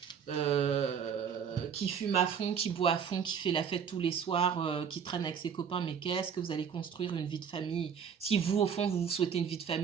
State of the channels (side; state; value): left; quieter; 7.3 dB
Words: qui fume à fond, qui boit à fond, qui fait la fête tous les soirs, qui traîne avec ses copains, mais qu'est-ce que vous allez construire une vie de famille? Si vous, au fond, vous souhaitez une vie de